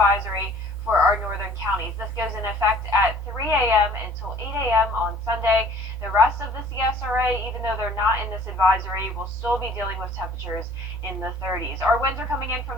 for our northern counties. This goes in effect at 3 a.m. until 8 a.m. on Sunday. The rest of the CSRA, even though they're not in this advisory, will still be dealing with temperatures in the 30s. Our winds are coming in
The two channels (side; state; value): both; normal; correlation 0.53